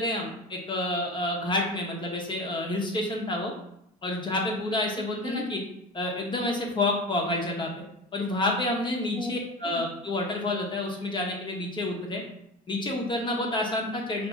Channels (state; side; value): normal; both; correlation 0.28